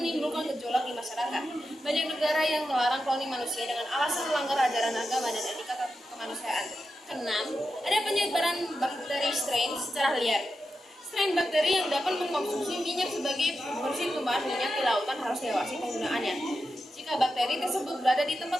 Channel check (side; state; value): both; normal; correlation 0.89